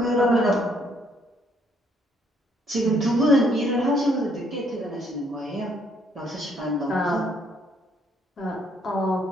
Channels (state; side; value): normal; both; correlation 0.67